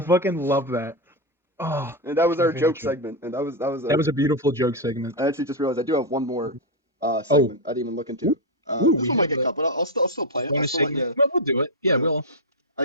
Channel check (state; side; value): normal; both; correlation 0.04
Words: love that. Oh, And that was our favorite joke segment. And that was a beautiful joke segment. I actually just realized I do have one more segment I didn't even look into. This one might get cut, but I'll still play it. Bonus segment. Well, we'll do it. Yeah, we'll.